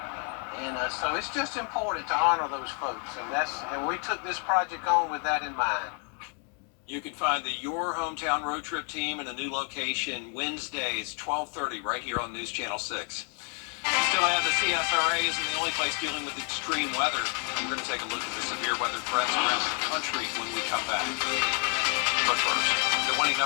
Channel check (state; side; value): quieter; right; 39.9 dB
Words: and so it's just important to honor those folks, and we took this project on with that in mind. You can find the Your Hometown Road Trip team in a new location Wednesdays, 12:30, right here on News Channel 6. Still ahead, the CSRA isn't the only place dealing with extreme weather. We're going to take a look at the severe weather threats around the country when we come back. But first, the winning